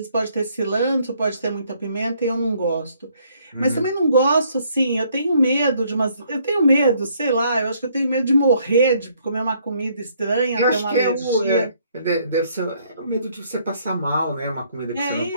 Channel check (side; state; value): both; inverted; correlation -0.67